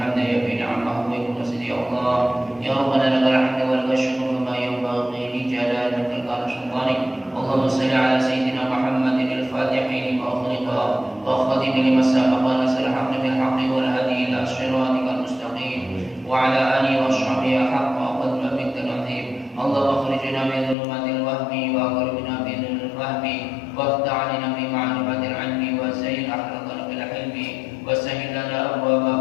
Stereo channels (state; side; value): drops out; right; at 20.8 s